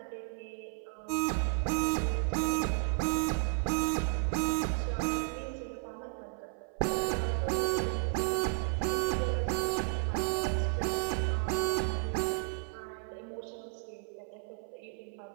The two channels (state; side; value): silent; left; 56 dB below the other